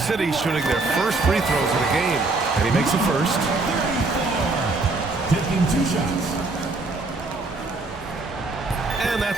shooting their first free throws of the game. And he makes the first. Taking 2 shots. And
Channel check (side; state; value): left; quieter; 3.4 dB